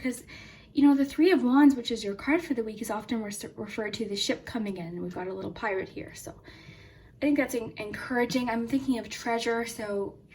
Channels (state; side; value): identical; both; correlation 1.00